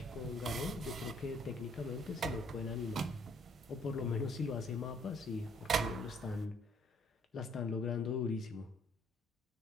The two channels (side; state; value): both; normal; correlation 0.62